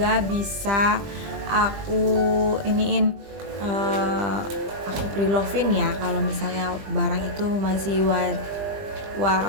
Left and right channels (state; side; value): late; left; 20 ms